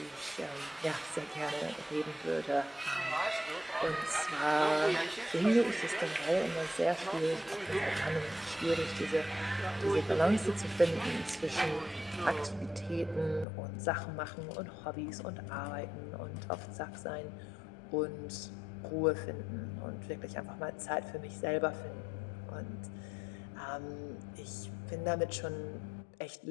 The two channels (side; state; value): right; drops out; at 13.5 s